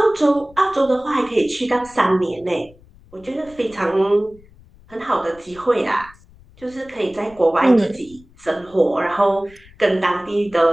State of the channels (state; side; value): noise; left; rumble, 26 dB below the sound